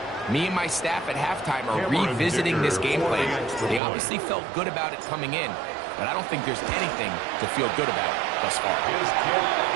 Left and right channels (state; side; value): drops out; left; at 3.8 s